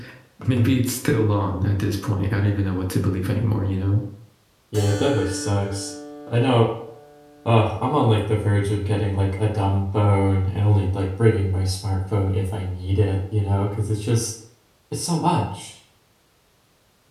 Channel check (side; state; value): both; identical; correlation 1.00